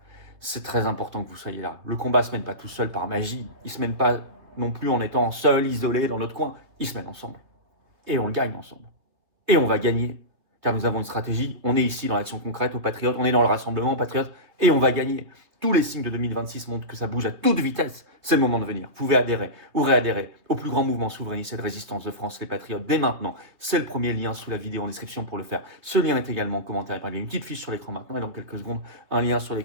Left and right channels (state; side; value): late; left; 3.2 ms